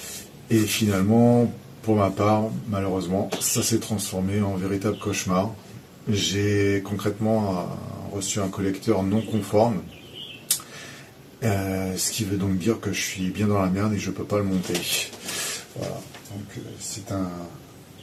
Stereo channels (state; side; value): identical; both; correlation 1.00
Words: Et finalement, pour ma part, malheureusement, ça s'est transformé en véritable cauchemar. J'ai concrètement reçu un collecteur non conforme, ce qui veut donc dire que je suis bien dans la merde et je ne peux pas le monter. Voilà, donc c'est